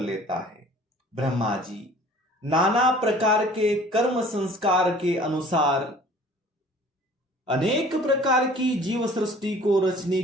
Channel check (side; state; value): both; normal; correlation 0.50